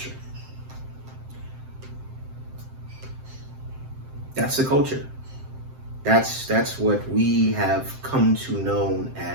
That's the culture. That's what we have come to know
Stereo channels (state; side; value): late; left; 7.7 ms